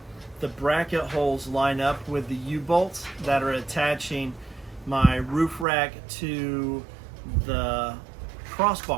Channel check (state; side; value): drops out; left; at 5.7 s